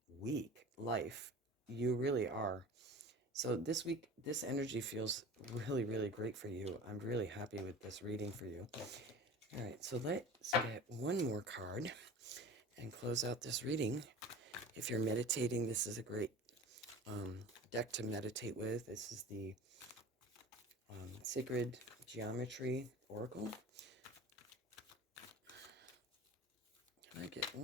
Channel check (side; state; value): both; normal; correlation 0.38